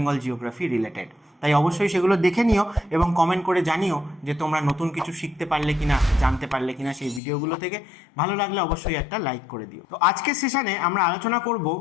জিওগ্রাফি রিলেটেড। তাই অবশ্যই সেগুলো দেখে নিও এবং কমেন্ট করে জানিও যে তোমরা নতুন কিছু শিখতে পারলে কিনা, জানতে পারলে কিনা সেই ভিডিওগুলো থেকে। ভালো লাগলে অবশ্যই একটা লাইক করে দিও। তো আজকের সেশনে আমরা আলোচনা করব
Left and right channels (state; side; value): drops out; right; at 7.2 s